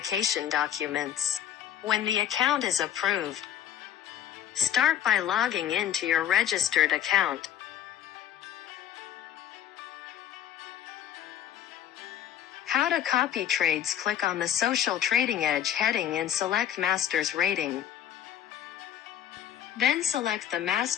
documents. When the account is approved, start by logging into your registered account. How to copy trades. Click on the Social Trading Edge heading and select Master's Rating. Then select the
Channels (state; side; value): quieter; right; 10.6 dB